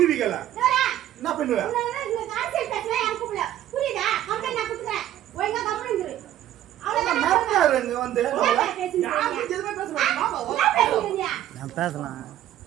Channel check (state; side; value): quieter; left; 12.6 dB